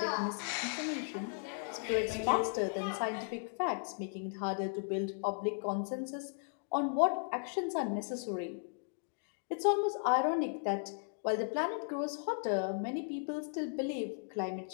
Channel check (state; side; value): silent; right; digital silence